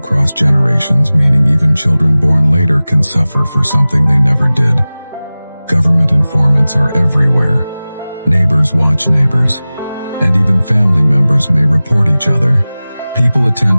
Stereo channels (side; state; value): both; inverted; correlation -0.98